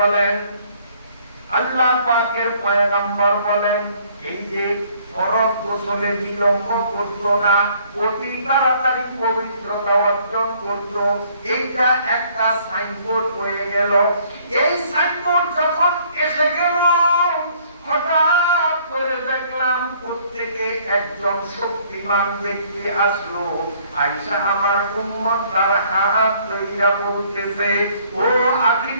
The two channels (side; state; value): both; inverted; correlation -0.62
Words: আল্লাহ পাকের পয়গম্বর বলেন, এই যে ফরজ গোসলে বিলম্ব করত না, অতি তাড়াতাড়ি পবিত্রতা অর্জন করত, এইটা একটা সাইনবোর্ড হয়ে গেল। এই সাইনবোর্ড যখন এসে গেল, হঠাৎ করে দেখলাম প্রত্যেকে একজন শক্তিমান ব্যক্তি আসলো। আয়েশা আমার উম্মত তার হাত ধইরা বলতেছে, ও